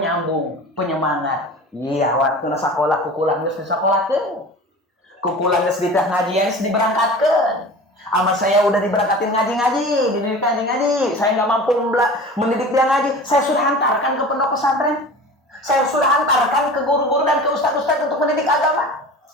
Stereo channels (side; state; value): both; normal; correlation 0.37